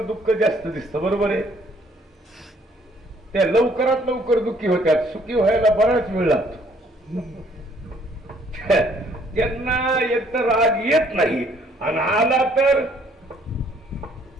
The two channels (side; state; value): both; normal; correlation 0.63